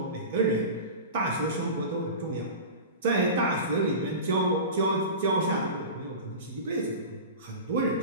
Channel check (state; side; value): inverted; both; correlation -0.30